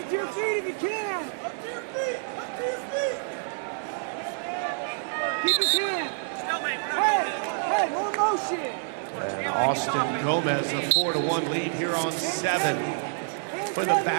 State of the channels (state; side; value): silent; left; 57 dB below the other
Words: to your feet if you can! Up to your feet! Up to your feet! Keep his hand! Hey, more motion! And Austin Gomez, a 4-1 lead here on 7 for the